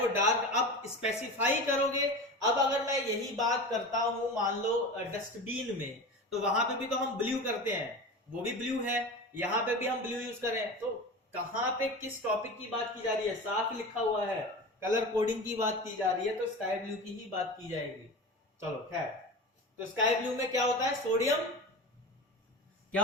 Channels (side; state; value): both; normal; correlation 0.30